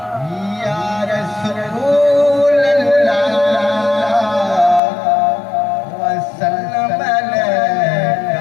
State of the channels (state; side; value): drops out; right; at 4.8 s